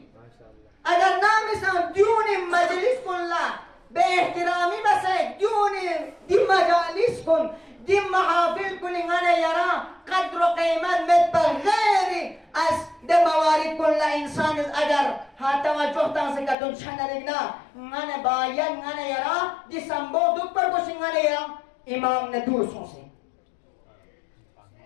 اگر نامسان دیون مجلس کن لا به احترامی بسه دیون دی مجالس کن دی محافل کن انگانه یرا قدر و قیمت مت بغیر از دی موارد کن لا انسان اگر ها توجه تانسه کتون چنرگنا انگانه باید انگانه یرا دی سنبو دو پر کش انگانه یرا امام ندور سونسه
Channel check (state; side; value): drops out; right; at 16.6 s